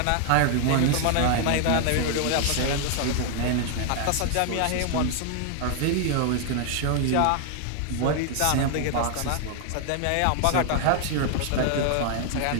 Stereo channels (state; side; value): different; both; correlation 0.00